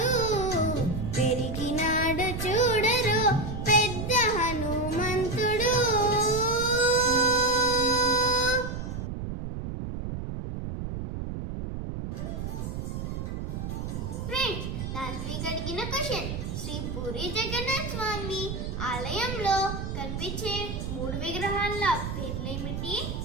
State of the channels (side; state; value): right; noise; rumble, 5 dB below the sound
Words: పెరిగినాడు చూడరు పెద్ద హనుమంతుడు ఫ్రెండ్స్ లాస్ట్ వీక్ అడిగిన క్వశ్చన్ శ్రీ పూరి జగన్నాథ్ స్వామి ఆలయంలో కనిపించే 3 విగ్రహాల పేర్లేమిటి?